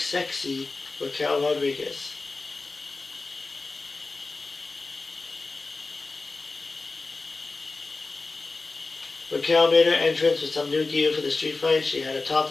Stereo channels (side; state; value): right; quieter; 3.6 dB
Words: Raquel Rodriguez. Raquel made her entrance with some new gear for the street fight. She had a top